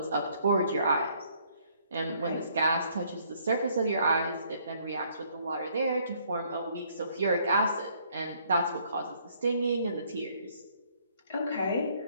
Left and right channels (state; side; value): inverted; both; correlation -0.65